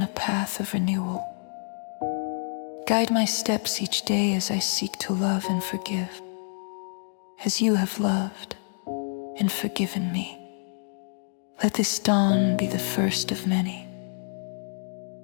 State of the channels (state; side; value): silent; right; 60 dB below the other